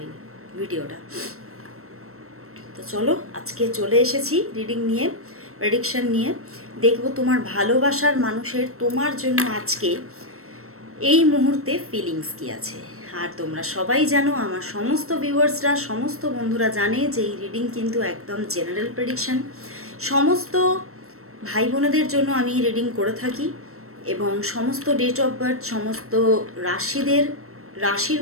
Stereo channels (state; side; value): late; left; 0.63 ms